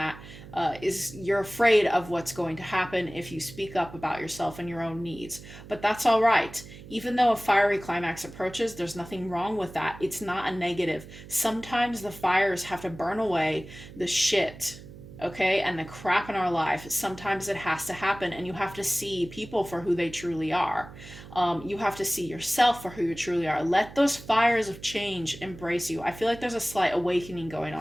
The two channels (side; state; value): right; noise; hum, 16 dB below the sound